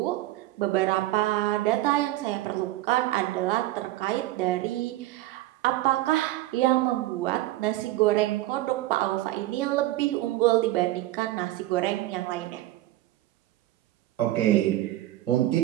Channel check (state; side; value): quieter; left; 16.2 dB